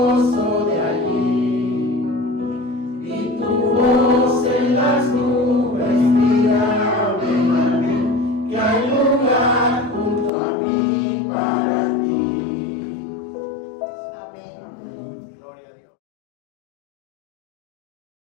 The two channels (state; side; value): drops out; right; at 10.3 s